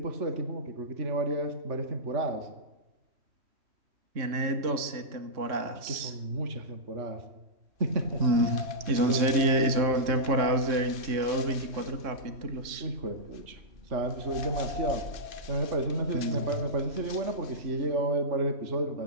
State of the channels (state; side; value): late; left; 3.6 ms